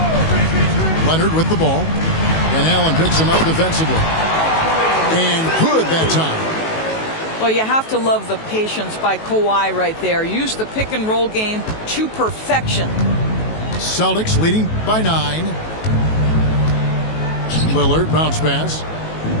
Leonard with the ball. And Allen picks him up defensively. And good that time. Well, you have to love the patience by Kawhi right there. Use the pick and roll game to perfection. Celtics leading by 9. Lillard bounce pass.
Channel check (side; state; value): right; late; 19 ms